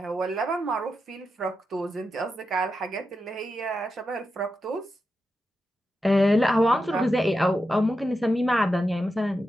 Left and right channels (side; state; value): both; normal; correlation 0.88